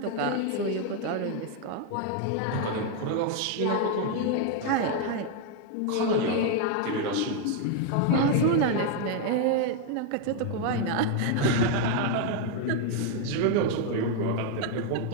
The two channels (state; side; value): different; both; correlation 0.01